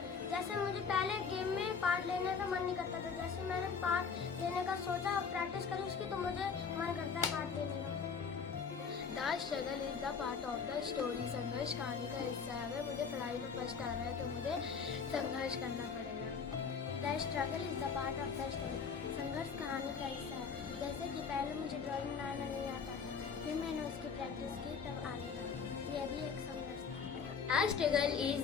जैसे मुझे पहले गेम में पार्ट लेने का मन नहीं करता था। जैसे मैंने पार्ट लेने का सोचा और प्रैक्टिस करी उसकी तो मुझे मन करता है पार्ट लेने का। The struggle is the part of the story. संघर्ष कहानी का हिस्सा है। अगर मुझे पढ़ाई में फर्स्ट आना है तो मुझे संघर्ष करना पड़ेगा। The struggle is the part of the story. संघर्ष कहानी का हिस्सा है। जैसे कि पहले मुझे ड्राइंग बनाना नहीं आता था, फिर मैंने उसकी प्रैक्टिस की तब आ गया। यह भी एक संघर्ष था। The struggle is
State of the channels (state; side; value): quieter; right; 5.9 dB